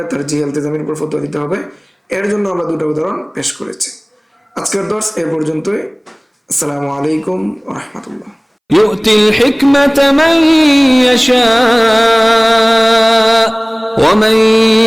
তারজিহে ইলতিজামির উপর ফতোয়া দিতে হবে। এর জন্য আমরা দুটা উদাহরণ পেশ করেছি। আজকের দর্স এ পর্যন্তই। আসসালামু আলাইকুম ওয়া রাহমাতুল্লাহ। يؤتي الحكمة من يشاء ومن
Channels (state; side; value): identical; both; correlation 1.00